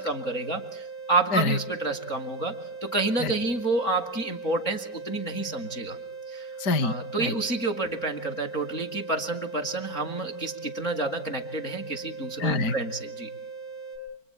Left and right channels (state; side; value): late; right; 4.4 ms